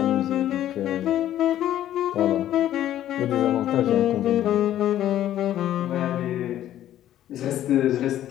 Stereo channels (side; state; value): right; quieter; 12.2 dB